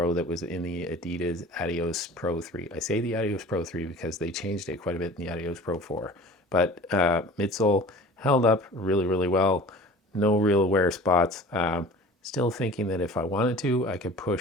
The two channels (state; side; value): normal; both; correlation 0.42